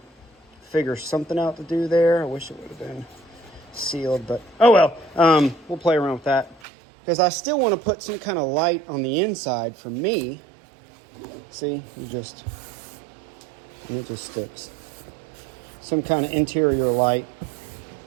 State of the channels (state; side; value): drops out; left; at 6.6 s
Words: Figure something out to do there. I wish it would have been sealed, but oh well. We'll play around with that, because I still want to put some kind of light on the inside for me. See, and it just sticks. Some kind of interior light.